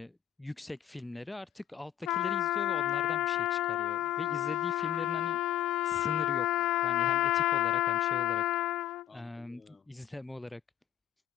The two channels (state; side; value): quieter; right; 12.3 dB